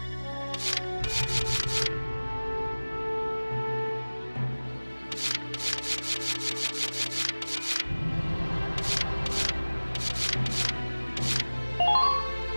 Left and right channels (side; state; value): both; inverted; correlation -1.00